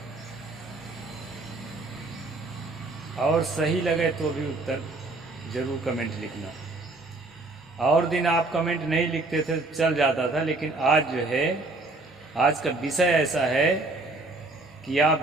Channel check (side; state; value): left; quieter; 3.1 dB